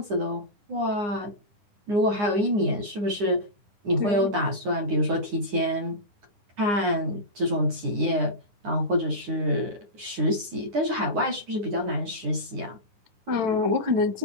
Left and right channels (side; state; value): left; late; 9.8 ms